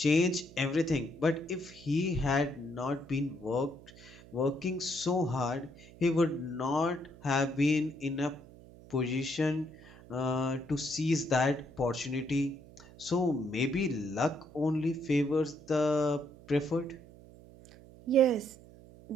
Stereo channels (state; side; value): noise; right; hum, 21 dB below the sound